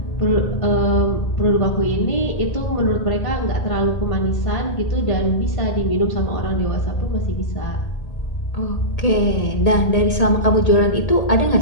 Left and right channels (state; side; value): late; right; 1.8 ms